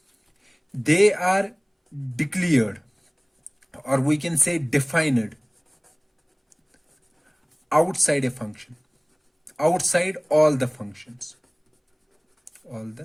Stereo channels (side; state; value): both; identical; correlation 1.00